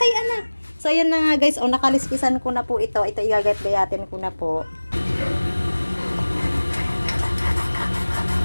anak. So ayan na nga guys. Nakaliskisan ko na po ito. Ito igagat-gayatin ko na po.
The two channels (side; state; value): both; inverted; correlation -1.00